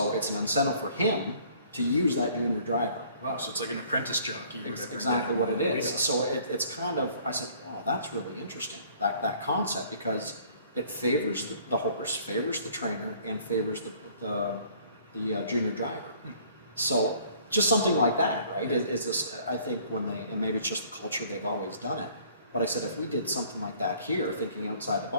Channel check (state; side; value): inverted; both; correlation -0.57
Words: it's an incentive for him to use that junior driver. Wow, so it's like an apprentice jockey. Exactly what it is. So it's kind of, I said, oh, that's really interesting, that concept, because it favors the horse, favors the trainer, and favors the junior driver. So just something like that, right? Is this, I think when they, and maybe it's just the culture, they've always done it. But I said, if we did something like that here, thinking outside the